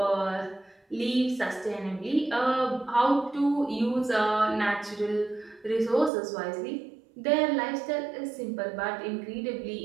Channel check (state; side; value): drops out; left; at 6.1 s